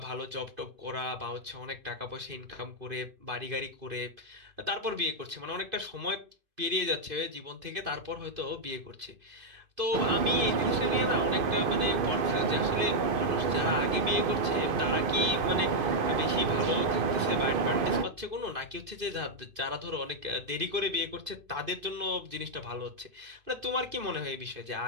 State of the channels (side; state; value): left; late; 2.5 ms